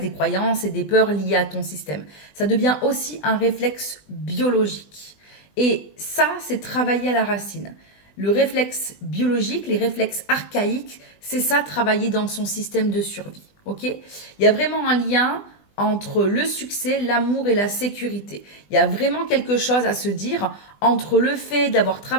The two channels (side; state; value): right; late; 20 ms